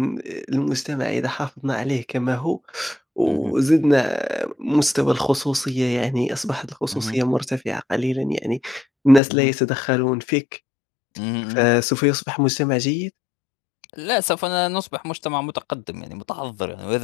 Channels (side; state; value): right; drops out; at 9.2 s